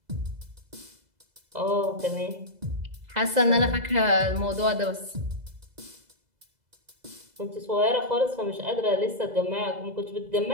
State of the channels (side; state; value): left; late; 2.0 ms